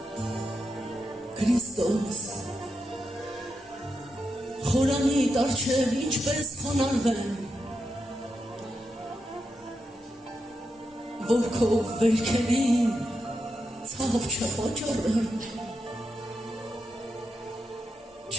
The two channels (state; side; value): normal; both; correlation 0.86